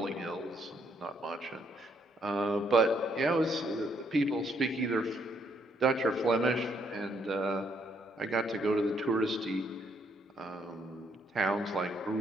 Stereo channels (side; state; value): both; normal; correlation 0.72